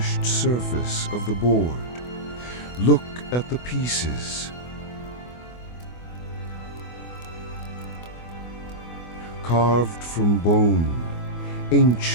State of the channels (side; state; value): right; late; 24 ms